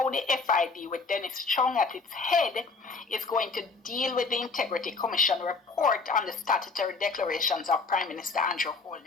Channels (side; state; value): right; quieter; 4.2 dB